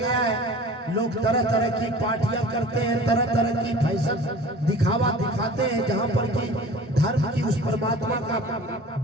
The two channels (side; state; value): both; normal; correlation 0.42